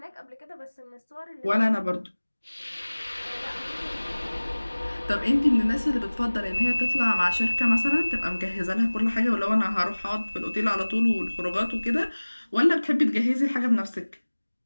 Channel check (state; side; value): inverted; both; correlation -1.00